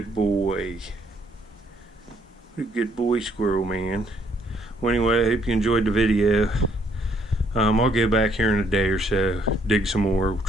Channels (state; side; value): normal; both; correlation 0.67